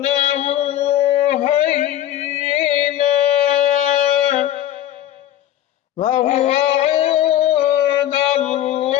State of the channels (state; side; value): quieter; right; 12.3 dB